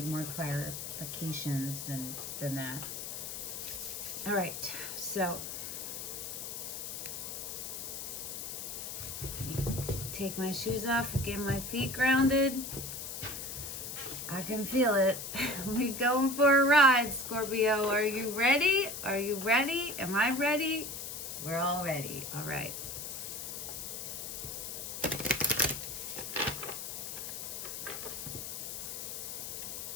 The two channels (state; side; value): noise; left; hiss, 6 dB below the sound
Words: more clarifications than that. All right, so take my shoes off, get my feet grounded. I can feel it. We going for a ride, Scorpio. Are you ready? Are you ready? Am I ready? We're all ready. All right.